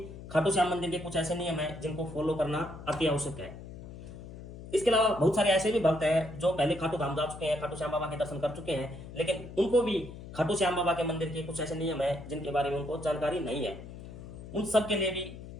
खाटू श्याम मंदिर के कुछ ऐसे नियम हैं जिनको फॉलो करना अति आवश्यक है। इसके अलावा बहुत सारे ऐसे भी भक्त हैं जो पहले खाटू धाम जा चुके हैं, खाटू श्याम बाबा के दर्शन कर चुके हैं, लेकिन उनको भी खाटू श्याम बाबा के मंदिर के कुछ ऐसे नियम हैं जिनके बारे में उनको जानकारी नहीं है। उन सब के लिए भी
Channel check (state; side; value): noise; left; hum, 13 dB below the sound